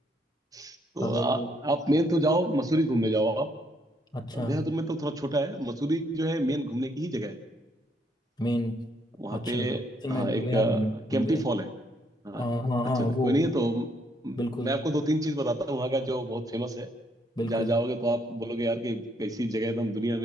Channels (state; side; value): normal; both; correlation 0.71